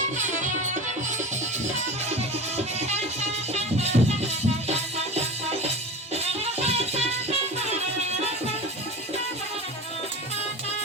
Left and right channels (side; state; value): both; normal; correlation 0.31